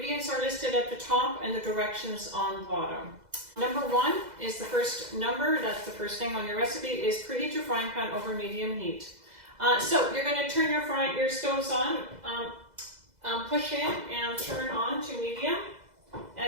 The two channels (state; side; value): late; left; 2.0 ms